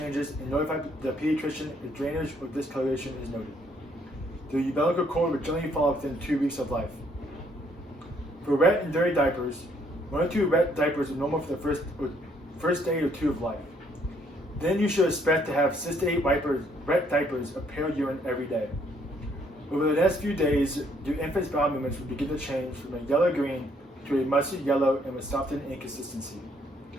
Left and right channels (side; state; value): both; normal; correlation 0.67